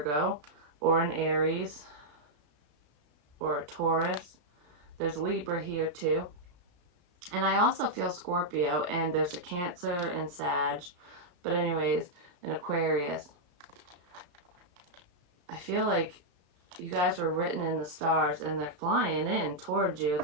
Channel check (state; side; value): late; left; 34 ms